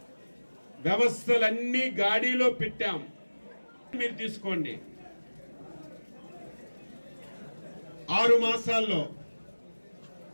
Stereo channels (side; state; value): both; inverted; correlation -1.00